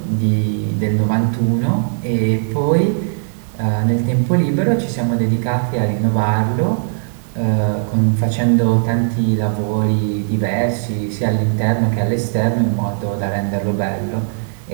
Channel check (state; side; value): silent; left; digital silence